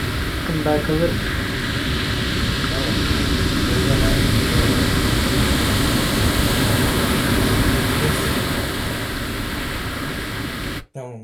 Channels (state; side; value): identical; both; correlation 1.00